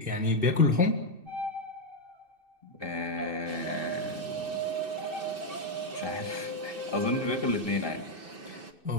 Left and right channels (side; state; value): left; late; 2.6 ms